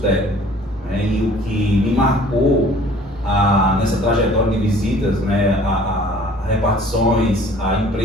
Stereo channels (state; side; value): normal; both; correlation 0.52